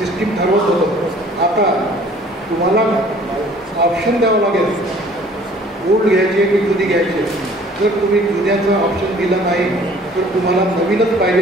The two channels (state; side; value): normal; both; correlation 0.53